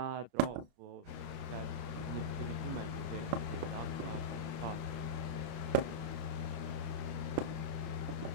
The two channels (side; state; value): left; late; 30 ms